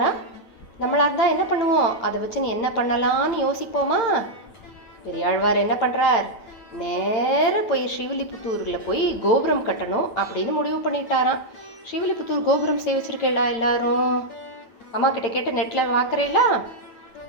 நம்மளாக இருந்தால் என்ன பண்ணுவோம்? அதை வச்சு நீ என்ன பண்ணலான்னு யோசிப்போமா? பெரியாழ்வார் என்ன பண்ணுறார்? நேராக போய் ஸ்ரீவில்லிபுத்தூரில் போய் கோபுரம் கட்டணும் அப்படின்னு முடிவு பண்ணிட்டாராம். ஸ்ரீவில்லிபுத்தூர் கோபுரம் சேவிச்சிருக்கேளா எல்லாரும்? அம்மா கிட்ட கேட்டு நெட்டில் பார்க்குறேங்களா?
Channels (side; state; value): right; late; 9.0 ms